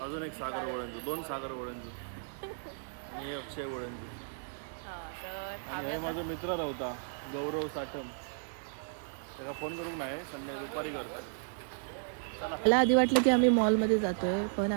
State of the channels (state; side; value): silent; left; digital silence